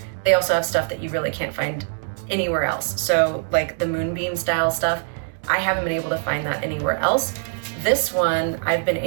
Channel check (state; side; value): silent; left; 63 dB below the other